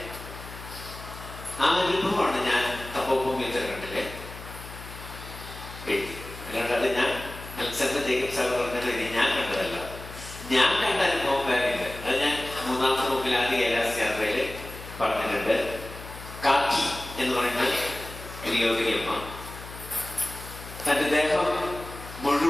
ആ അനുഭവമാണ് ഞാൻ തപോഭൂമി ഉത്തരാഖണ്ഡിലെ എഴുതി. അല്ലാണ്ട് അത് ഞാൻ അലക്സാണ്ടർ ജേക്കബ് സാർ പറഞ്ഞത് ഞാൻ കണ്ടതല്ല, ഞാൻ കണ്ട അനുഭവം വേറെ ഇല്ല. അത് ഞാൻ 3ാമത്തെ ബുക്കിൽ ആദ്യ കൈലാസ് യാത്രയിൽ പറഞ്ഞിട്ടുണ്ട്. കാക്കി എന്ന് പറയുന്ന ഒരു യോഗിനിയമ്മ തൻ്റെ ദേഹം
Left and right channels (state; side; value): noise; left; hum, 13 dB below the sound